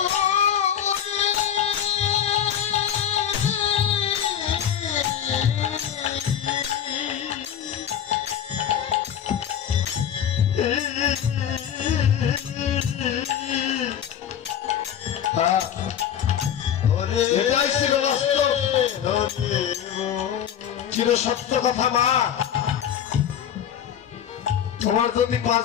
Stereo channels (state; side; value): quieter; right; 9.3 dB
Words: এটাই ছিল বাস্তব, চির সত্য কথা। মা, তোমার যদি 5